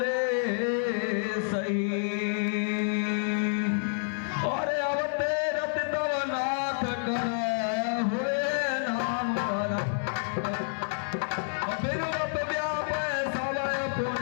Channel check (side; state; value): right; silent; 59 dB below the other